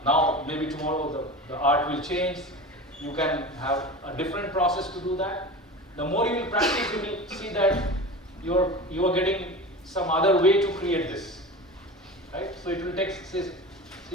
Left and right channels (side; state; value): both; normal; correlation 0.31